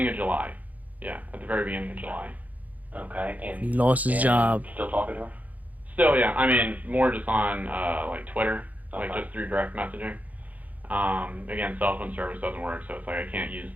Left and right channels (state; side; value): late; left; 0.077 ms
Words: of July. Yeah, at the very beginning of July. Okay. And He lost his and job. Still talking to her? Still, yeah. I mean, more just on like Twitter, like Okay. just through direct messaging. Again, cell phone service doesn't work, so it's like I can't use